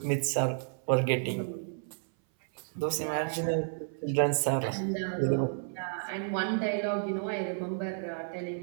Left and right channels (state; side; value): silent; left; 57 dB below the other